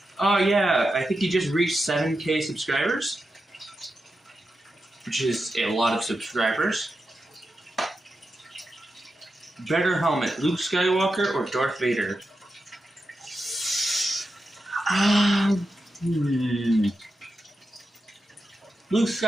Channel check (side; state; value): both; normal; correlation 0.89